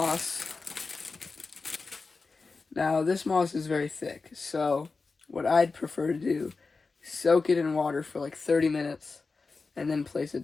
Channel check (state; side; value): quieter; right; 4.2 dB